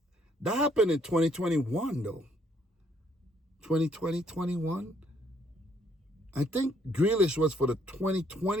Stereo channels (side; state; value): both; normal; correlation 0.67